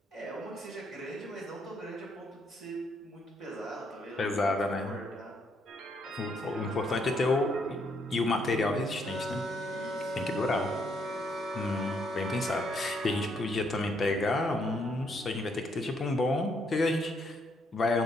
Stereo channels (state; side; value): normal; both; correlation 0.73